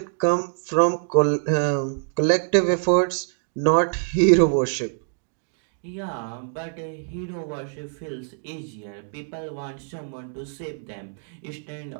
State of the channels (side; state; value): left; silent; 60 dB below the other